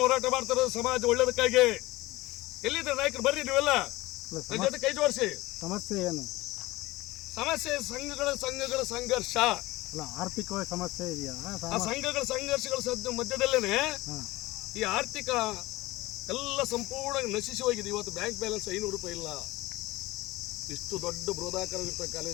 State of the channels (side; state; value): right; quieter; 19.4 dB